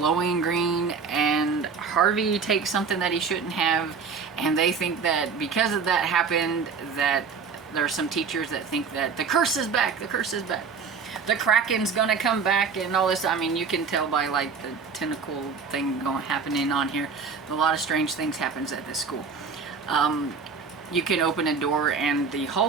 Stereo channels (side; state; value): left; quieter; 5.5 dB